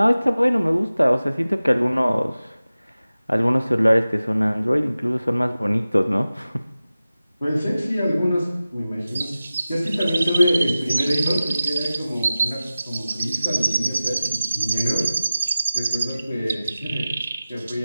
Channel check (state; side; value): inverted; both; correlation -0.96